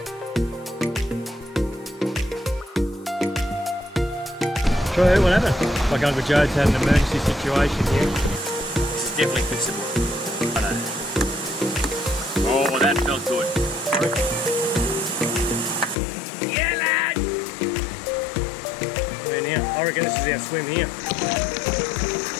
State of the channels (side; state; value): right; drops out; at 16.0 s